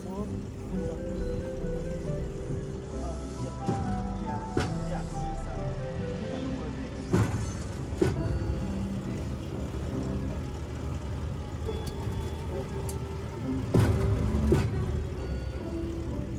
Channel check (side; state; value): both; identical; correlation 1.00